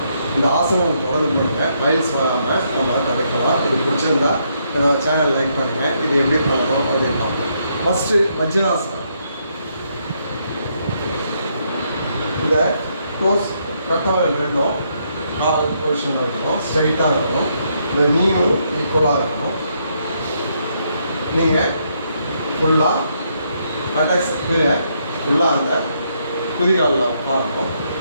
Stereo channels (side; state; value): both; inverted; correlation -0.75